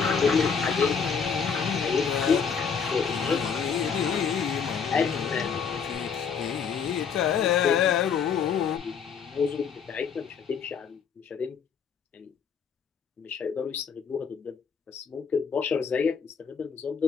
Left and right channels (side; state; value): right; quieter; 6.4 dB